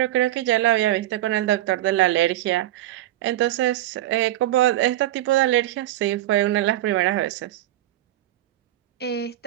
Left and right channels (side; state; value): left; quieter; 14.2 dB